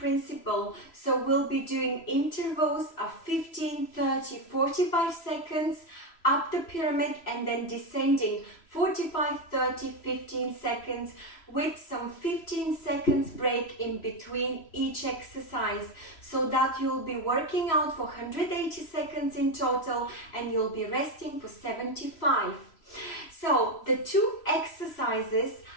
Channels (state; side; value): late; right; 3.0 ms